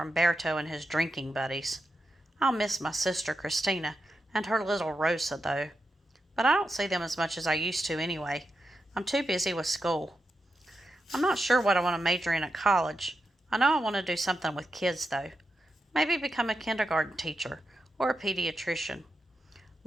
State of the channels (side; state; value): both; normal; correlation 0.88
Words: Berto and his drinking buddies. I'll miss my sister Christina and her little Rosa, though. But I don't see them as much as I used to anyway. I'm too busy with school. I'm not sure what I want to major in at college. I know I want to do something with kids, though. Maybe become a kindergarten teacher or a pediatrician.